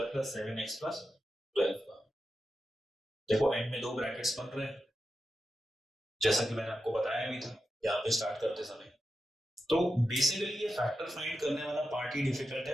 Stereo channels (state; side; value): normal; both; correlation 0.90